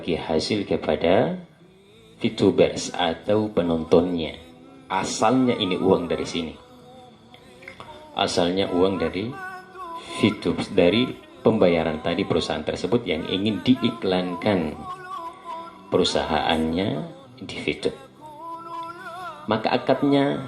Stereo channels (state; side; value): identical; both; correlation 1.00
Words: hasil kepada VTubers atau penontonnya. Asalnya ini uang dari sini. Asalnya uang dari VTube, dari pembayaran tadi perusahaan tersebut yang ingin diiklankan perusahaannya di VTube. Maka